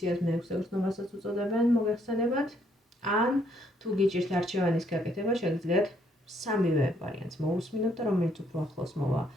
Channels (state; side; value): normal; both; correlation 0.69